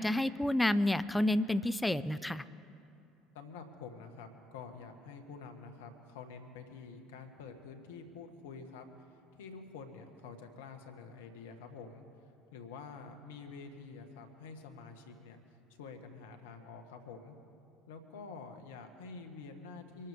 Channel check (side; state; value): both; normal; correlation 0.85